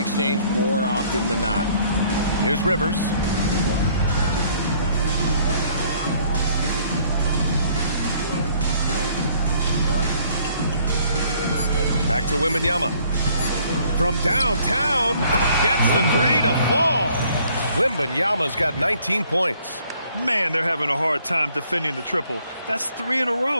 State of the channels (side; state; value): both; inverted; correlation -0.61